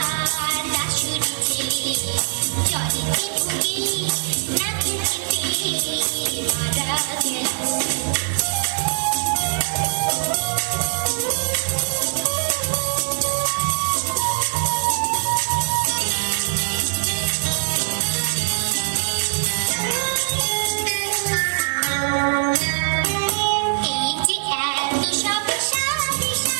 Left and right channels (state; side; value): silent; left; digital silence